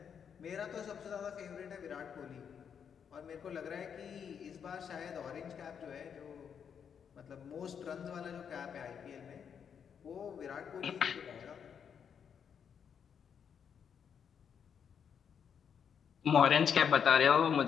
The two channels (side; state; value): right; quieter; 7.5 dB